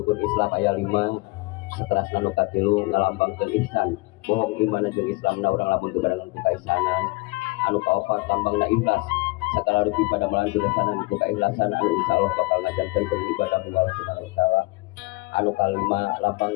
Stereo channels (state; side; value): quieter; right; 24.2 dB